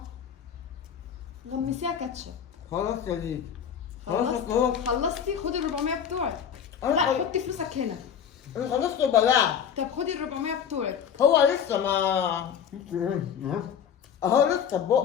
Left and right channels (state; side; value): quieter; right; 8.1 dB